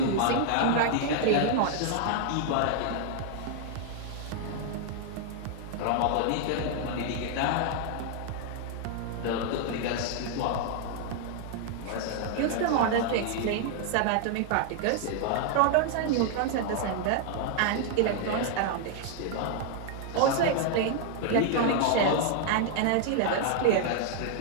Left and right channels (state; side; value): different; both; correlation 0.00